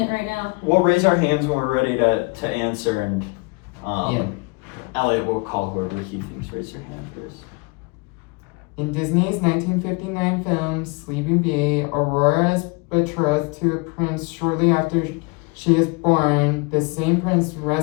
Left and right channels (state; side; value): quieter; right; 29.3 dB